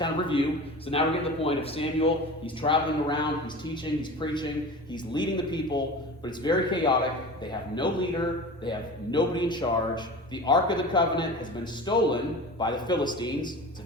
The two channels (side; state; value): both; normal; correlation 0.34